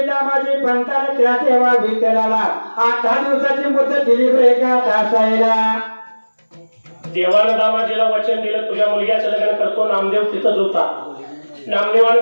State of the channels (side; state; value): both; inverted; correlation -1.00